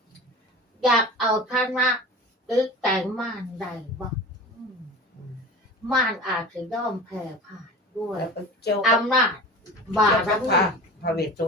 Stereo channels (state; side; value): normal; both; correlation 0.35